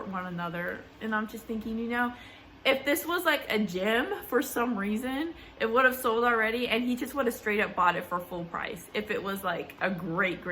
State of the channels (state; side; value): identical; both; correlation 1.00